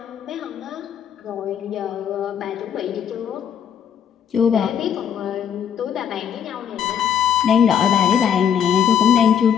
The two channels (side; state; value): right; quieter; 8.5 dB